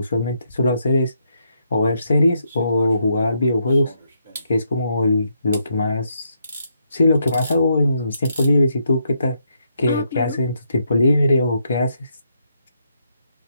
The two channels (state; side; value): inverted; both; correlation -0.77